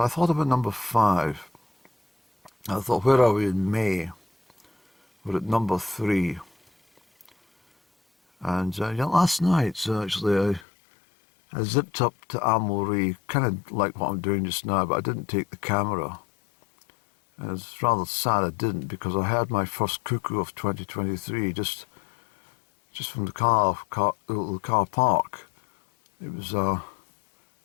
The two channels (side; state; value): right; drops out; at 10.7 s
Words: thought about number 5. I thought, where are we in May? We're at number 3. And last night, actually, I zipped up to Amory, kind of like what I'm doing just now, but I didn't take the camera. And it's rather sad I didn't, because I had my first cuckoo of 2023 just from the car park. It was,